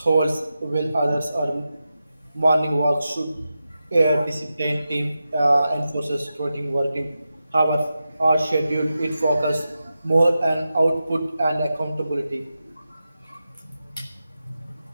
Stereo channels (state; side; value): inverted; both; correlation -0.91